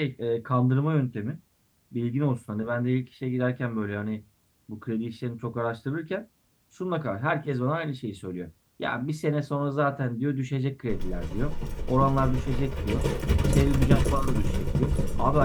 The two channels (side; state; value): both; identical; correlation 1.00